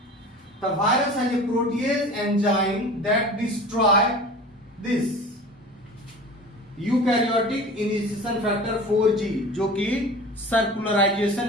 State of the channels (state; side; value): normal; both; correlation 0.38